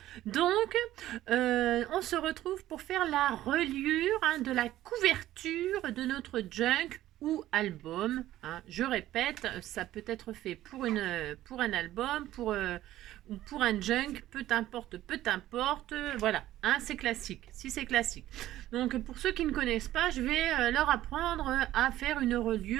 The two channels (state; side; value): quieter; left; 14.2 dB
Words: donc, on se retrouve pour faire la reliure de la couverture de notre junk ou album. Je répète, ça peut être fait pour un album, ou pour un junk, peu importe, voilà, c'est classique, si c'est classique. Donc, pour ceux qui ne connaissent pas, je vais leur apprendre à faire une